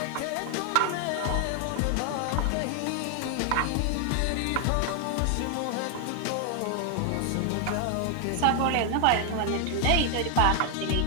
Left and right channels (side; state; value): both; different; correlation 0.00